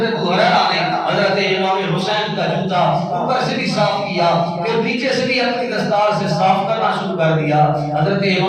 ابو ہریرہ نے حضرت امام حسین کا جوتا اوپر سے بھی صاف کیا، پھر پیچھے سے بھی اپنی دستار سے صاف کرنا شروع کر دیا. حضرت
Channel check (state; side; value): identical; both; correlation 1.00